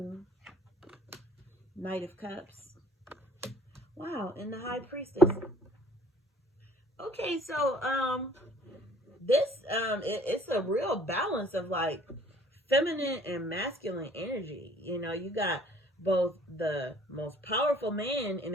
Knight of Cups. Wow, and the High Priestess. Okay, so this it's a real balance of like feminine and masculine energy. You got both the most powerful man in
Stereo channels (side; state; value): both; normal; correlation 0.56